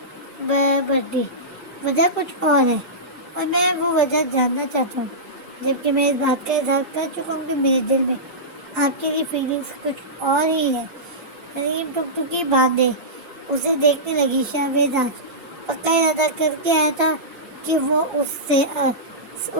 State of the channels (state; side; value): normal; both; correlation -0.16